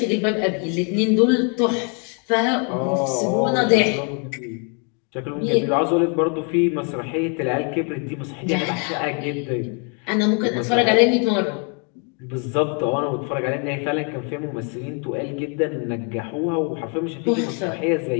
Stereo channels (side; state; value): right; quieter; 38.4 dB